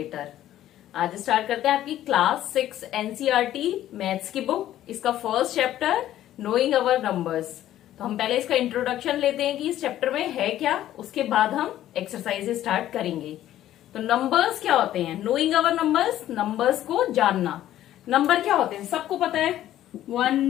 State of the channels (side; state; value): right; quieter; 12.8 dB